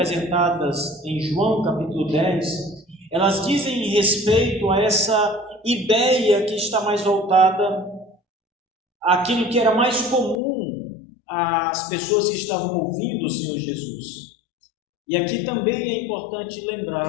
em João capítulo 10, elas dizem respeito a essa ideia que está mais voltada àquilo que era mais comum às pessoas que estavam ouvindo o Senhor Jesus. E aqui também é importante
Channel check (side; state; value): right; drops out; at 10.4 s